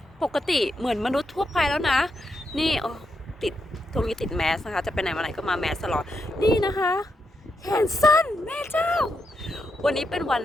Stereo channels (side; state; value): both; normal; correlation 0.83